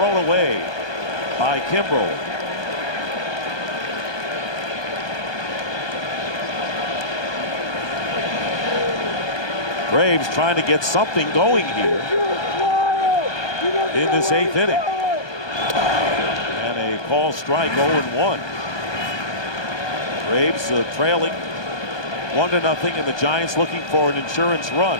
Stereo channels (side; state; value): right; late; 1.2 ms